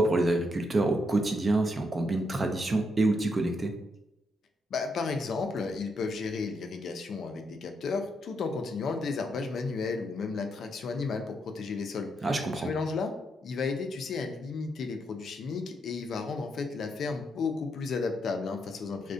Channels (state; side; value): normal; both; correlation 0.79